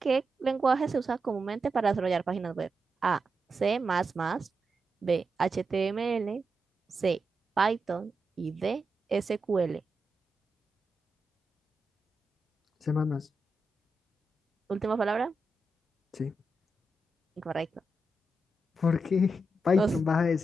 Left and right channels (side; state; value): both; normal; correlation 0.87